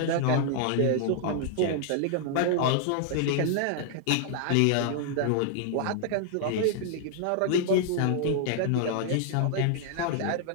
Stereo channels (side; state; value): both; different; correlation -0.01